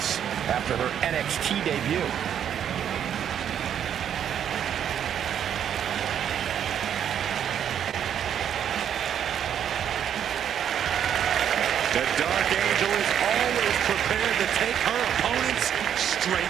after her NXT debut. The Dark Angel is always prepared to take her opponents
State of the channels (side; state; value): left; quieter; 9.2 dB